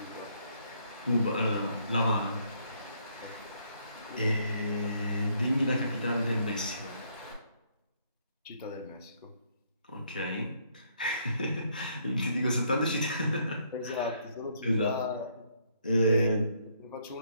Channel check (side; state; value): both; inverted; correlation -0.69